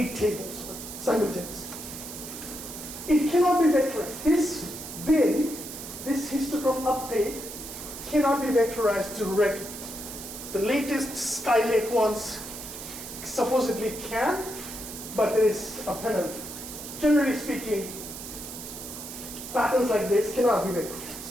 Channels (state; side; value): noise; right; hiss, 10 dB below the sound